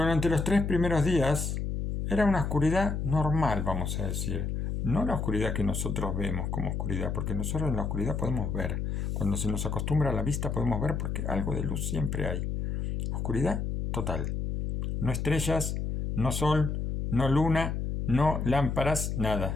los 3 primeros días era una oscuridad normal, vamos a decir. No la oscuridad que nosotros vemos como oscuridad, porque nosotros en la oscuridad podemos ver. Cuando se nos acostumbra a la vista podemos ver, porque algo de luz siempre hay. Oscuridad total. No estrellas, no sol, no luna, no lámparas,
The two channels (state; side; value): noise; left; hum, 2 dB below the sound